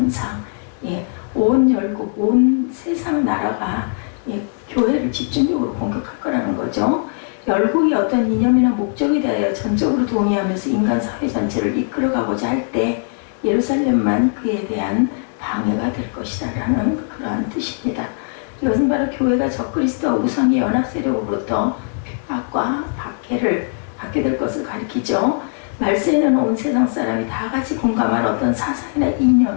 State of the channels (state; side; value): silent; right; 61 dB below the other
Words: 온 열국, 온 세상 나라가 교회를 집중적으로 공격할 거라는 거죠. 열국이 어떤 이념이나 목적에 대하여 전적으로 동의하면서 인간 사회 전체를 이끌어가고자 할 때 예루살렘만 그에 대한 방해가 될 것이다 라는 그러한 뜻입니다. 이것은 바로 교회가 적그리스도와 우상의 연합 세력으로부터 핍박과 박해를 받게 될 것을 가리키죠. 말세에는 온 세상 사람이 다 같이 공감할 어떤 사상이나